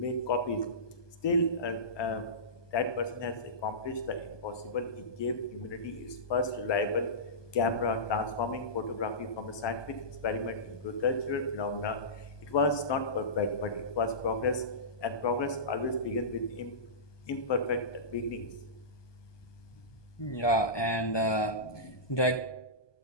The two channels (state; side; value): late; right; 1.2 ms